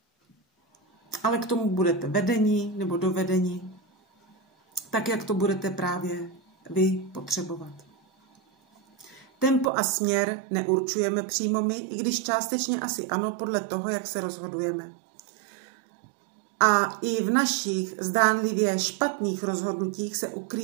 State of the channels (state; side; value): drops out; left; at 9.7 s